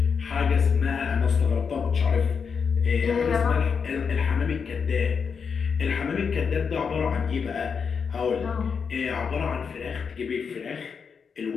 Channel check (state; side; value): quieter; right; 6.1 dB